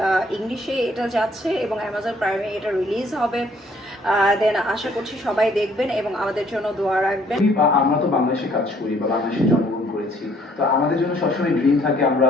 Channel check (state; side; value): normal; both; correlation 0.62